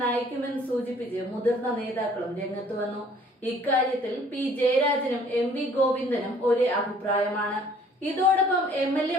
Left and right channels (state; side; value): normal; both; correlation 0.56